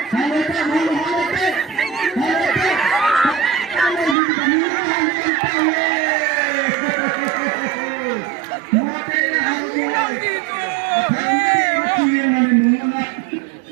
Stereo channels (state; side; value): drops out; left; at 4.2 s